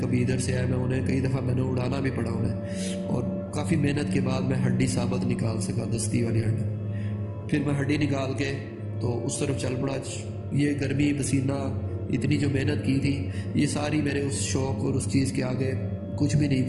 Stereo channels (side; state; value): both; identical; correlation 1.00